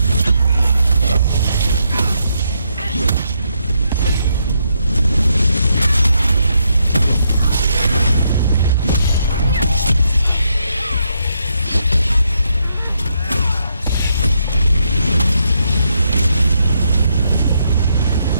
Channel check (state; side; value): inverted; both; correlation -0.78